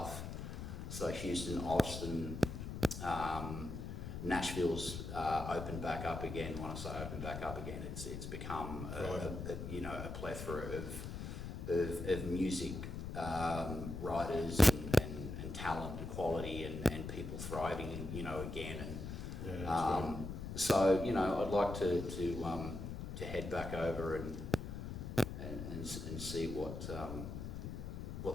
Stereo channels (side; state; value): left; noise; rumble, 6 dB below the sound